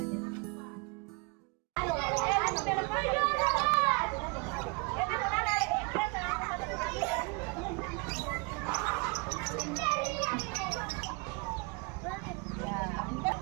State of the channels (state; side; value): quieter; left; 30.2 dB